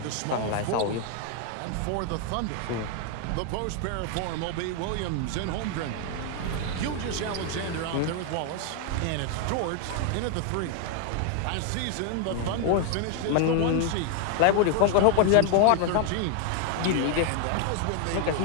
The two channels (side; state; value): both; different; correlation 0.00